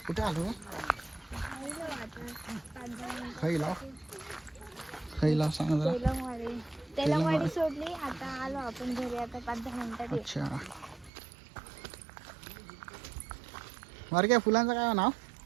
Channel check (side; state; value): left; drops out; at 11.1 s